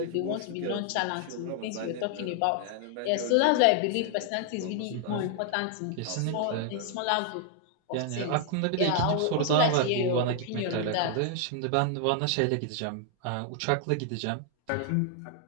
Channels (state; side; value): different; both; correlation 0.00